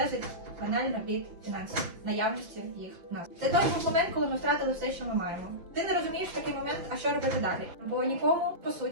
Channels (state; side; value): late; left; 6.3 ms